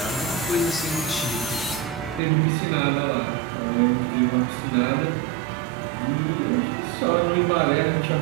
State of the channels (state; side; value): drops out; left; at 2.2 s